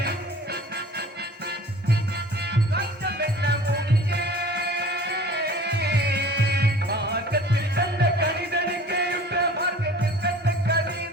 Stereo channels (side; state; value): both; normal; correlation 0.45